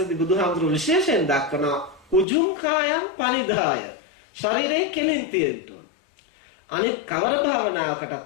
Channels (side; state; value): right; drops out; at 2.2 s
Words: බුදුහාමුදුරු විශේෂයෙන් දක්වන උජුං කායං පනිදාය ශරීරයේ කෙලින් තියෙන්න ඕන. අනිත් කවර